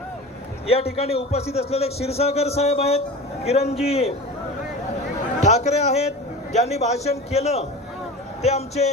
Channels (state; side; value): normal; both; correlation 0.32